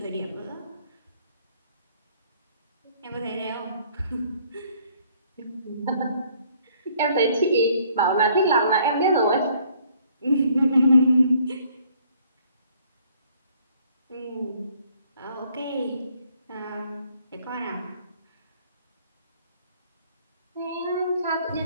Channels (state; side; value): inverted; both; correlation -0.62